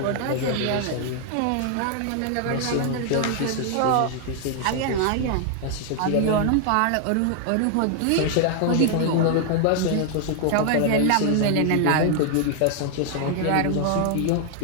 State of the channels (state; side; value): different; both; correlation 0.00